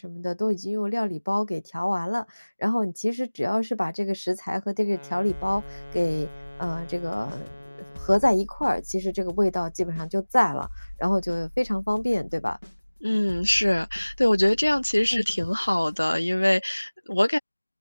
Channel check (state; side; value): inverted; both; correlation -1.00